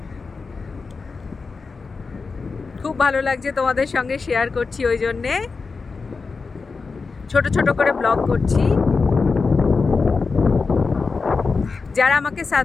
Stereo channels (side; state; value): right; quieter; 4.5 dB